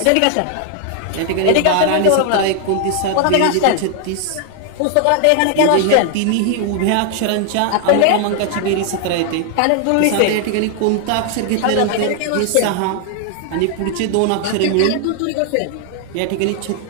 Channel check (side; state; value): both; different; correlation 0.00